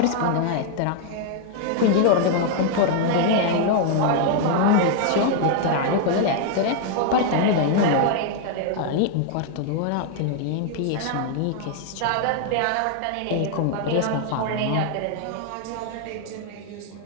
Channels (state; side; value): different; both; correlation 0.00